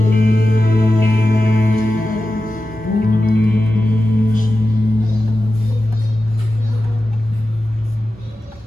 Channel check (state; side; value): normal; both; correlation 0.93